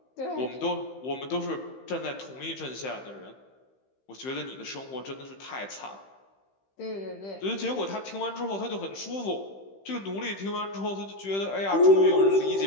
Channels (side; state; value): right; late; 15 ms